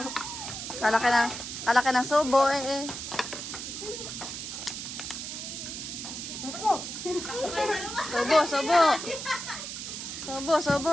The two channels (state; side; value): noise; right; hiss, 7 dB below the sound